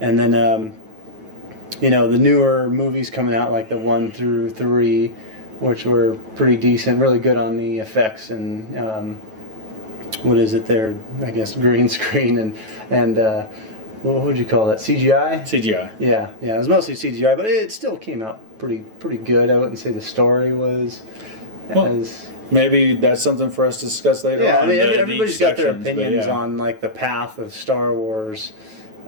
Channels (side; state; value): left; late; 9.2 ms